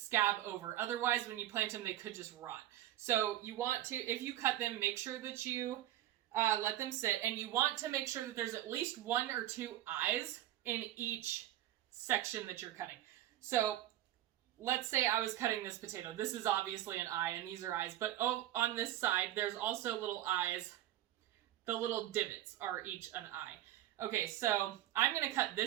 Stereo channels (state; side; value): quieter; left; 13.4 dB